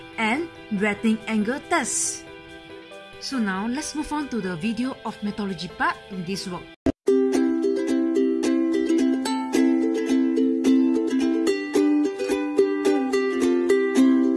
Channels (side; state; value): both; identical; correlation 1.00